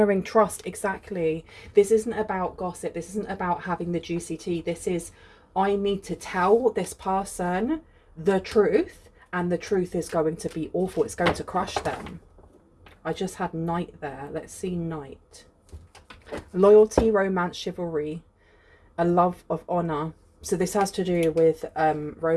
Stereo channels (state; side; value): identical; both; correlation 1.00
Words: trust. Exactly. This isn't about gossip. This isn't about having the juicy tea. This is, I need to tell this person the truth, and the truth is going to be awful. It's going to crush them. I just had knight there. Let's see knight. Loyalty, romance, chivalry, a love of honour. So this has to do with